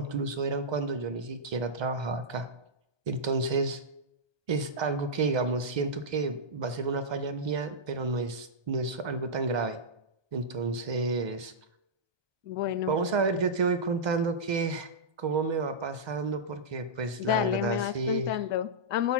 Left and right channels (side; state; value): left; late; 1.2 ms